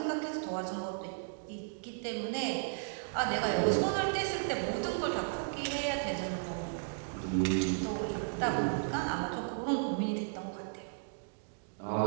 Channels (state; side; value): silent; left; digital silence